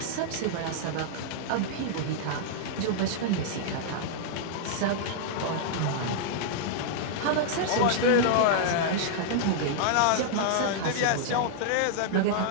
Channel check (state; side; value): different; both; correlation -0.01